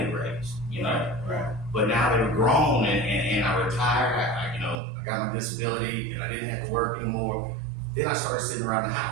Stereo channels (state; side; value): drops out; left; at 4.8 s